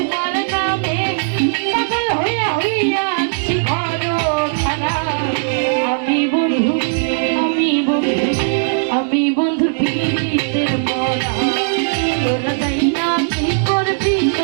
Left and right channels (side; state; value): left; silent; digital silence